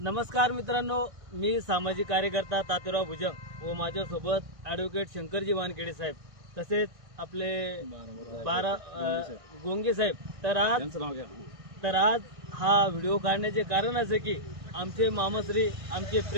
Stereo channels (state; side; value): late; left; 1.5 ms